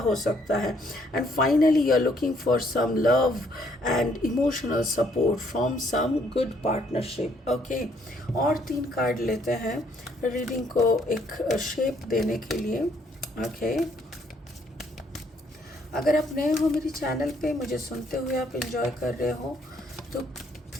सकता है. And finally you are looking for some love and emotional support from some good partnership. Okay, और 3 कार्ड लेते हैं रीडिंग को एक शेप देने के लिए. ओके, अगर आप नए हो मेरे चैनल पे, मुझे सुनते हुए आप एंजॉय कर रहे हो, तो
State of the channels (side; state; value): both; normal; correlation 0.67